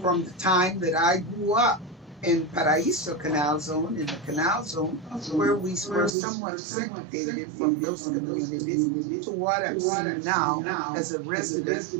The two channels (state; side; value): drops out; left; at 6.1 s